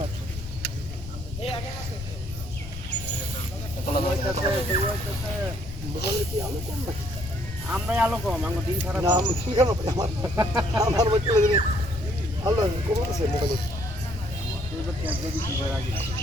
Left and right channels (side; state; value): left; noise; rumble, 11 dB below the sound